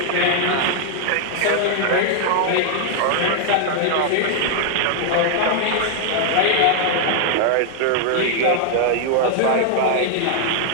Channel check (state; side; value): different; both; correlation 0.00